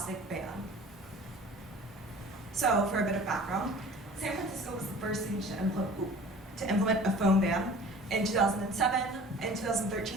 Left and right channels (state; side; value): normal; both; correlation 0.45